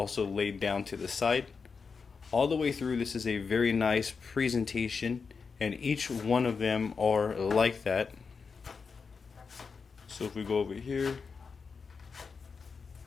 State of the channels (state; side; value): quieter; right; 5.2 dB